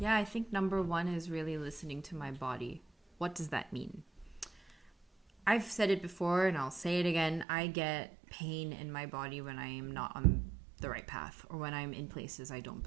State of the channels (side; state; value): left; drops out; at 7.5 s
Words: I think number one is really listening to my body. What does that mean? I've said it before and I'll say it again. I get pain in my body when I am not on the right path, or when I'm in places I don't